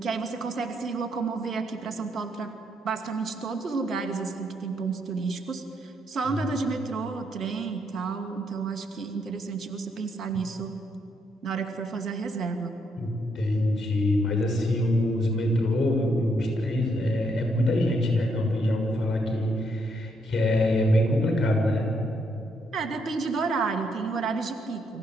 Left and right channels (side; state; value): both; normal; correlation 0.75